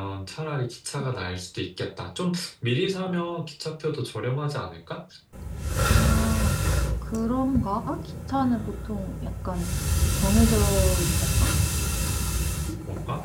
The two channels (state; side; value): identical; both; correlation 1.00